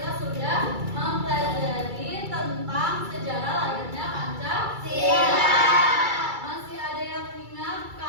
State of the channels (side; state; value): left; late; 2.3 ms